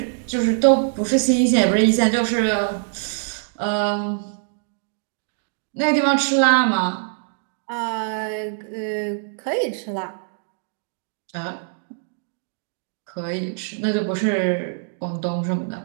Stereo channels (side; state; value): left; silent; digital silence